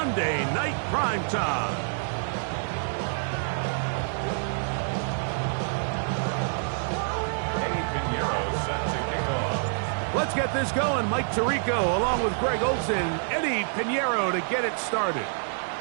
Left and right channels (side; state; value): left; silent; digital silence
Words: Night Primetime. Let's get this going. Mike Tirico along with Greg Olsen, Eddie Pinheiro to get it started.